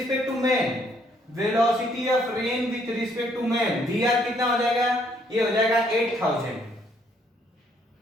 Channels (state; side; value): normal; both; correlation 0.67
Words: to man, velocity of rain with respect to man, V R कितना हो जाएगा, ये हो जाएगा 8000।